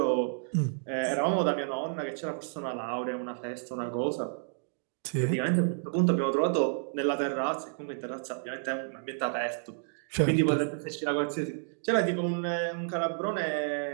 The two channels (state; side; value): silent; left; digital silence